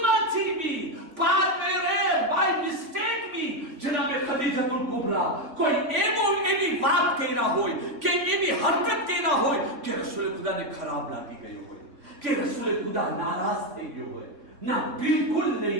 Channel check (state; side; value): late; left; 3.7 ms